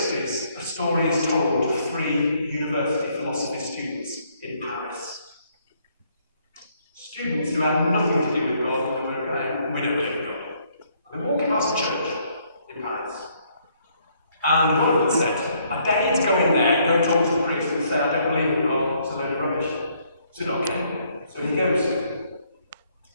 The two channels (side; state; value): both; inverted; correlation -0.69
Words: a story is told of 3 university philosophy students in Paris. Students who had nothing to do with God, and they were going, "We don't believe in God." And they're walking past a church in Paris. And one of them said, "I dare you to go in there and go and talk to the priest and say, 'I don't believe in God, it's a load of rubbish.'" I said, "Okay." So he goes.